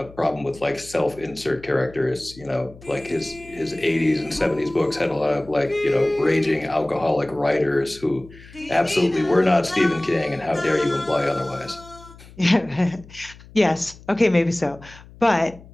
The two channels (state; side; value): noise; left; hum, 21 dB below the sound